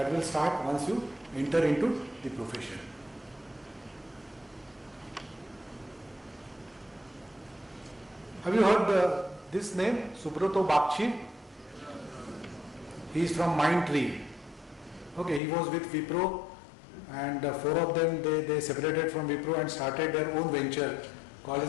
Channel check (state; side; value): drops out; right; at 15.4 s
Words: will start once you enter into the profession. Have you heard this name, Subrato Bakshi? He is from Mindtree. Okay, he was with Wipro, and 4 of them they separated from Wipro and started their own venture called